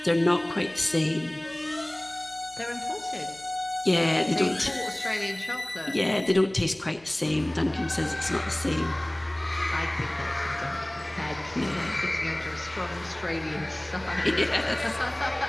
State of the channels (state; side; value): noise; left; hum, 28 dB below the sound